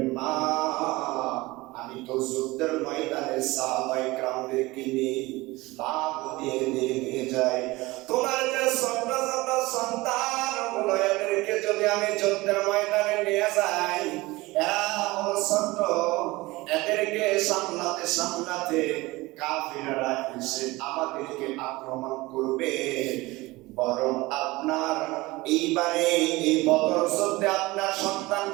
মা আমি তো যুদ্ধের ময়দানে সাহাবায়ে কেরামদেরকে নিয়ে লাভ দিয়ে নিয়ে যাই। তোমার যে ছোট ছোট সন্তানগুলো, এদেরকে যদি আমি যুদ্ধের ময়দানে নিয়ে যাই, এরা হলো ছোট, এদেরকে সামলাতে সামলাতে কাফিররা এসে আমাদেরকে আক্রমণ করবে। বরং আপনার এইবারে এই বদর যুদ্ধে আপনার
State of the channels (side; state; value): left; quieter; 21.0 dB